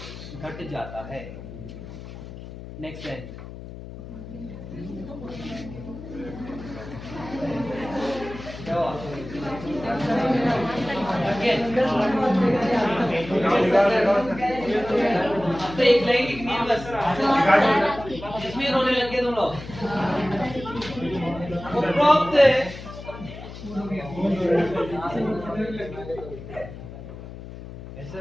घट जाता है। नेक्स्ट है क्या Again. अब तो एक लाइन लिखनी है बस, इसमें रोने लग गए तुम लोग। उपरोक्त ऐसे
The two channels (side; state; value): left; noise; hum, 13 dB below the sound